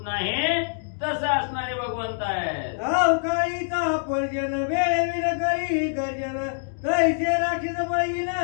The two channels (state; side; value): silent; right; digital silence